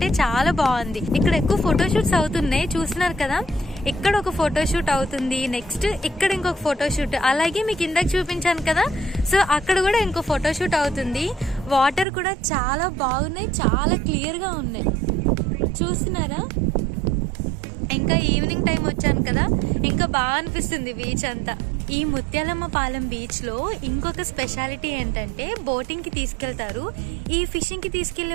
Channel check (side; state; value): left; drops out; at 12.1 s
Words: చాలా బాగుంది. ఇక్కడ ఎక్కువ ఫోటోషూట్స్ అవుతున్నాయి, చూస్తున్నారు కదా. ఇక్కడ ఒక ఫోటోషూట్ అవుతుంది, నెక్స్ట్ ఇక్కడ ఇంకొక ఫోటోషూట్, అలాగే మీకు ఇందాక చూపించాను కదా, సో అక్కడ కూడా ఇంకో ఫోటోషూట్ అవుతుంది. వాటర్ కూడా చాలా బాగున్నాయి, చాలా క్లియర్ గా ఉన్నాయి. చూస్తున్నారా? ఇంకా ఈవినింగ్ టైం వచ్చాను కదా, ఇంకా బాగా అనిపిస్తుంది బీచ్ అంతా. ఈ ముత్యాలమ్మ పాలెం బీచ్ లో ఇంకొక స్పెషాలిటీ ఏంటంటే బోటింగ్ కి తీసుకెళ్తారు. ఈ ఫిషింగ్ కి